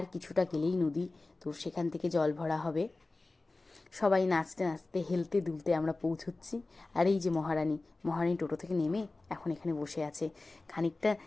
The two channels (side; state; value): right; quieter; 3.2 dB